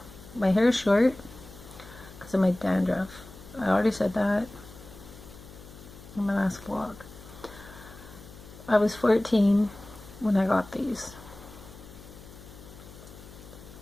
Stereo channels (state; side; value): noise; left; hum, 18 dB below the sound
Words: My hair is short because of my dandruff. I already said that in my last vlog. I was 14 when I got these.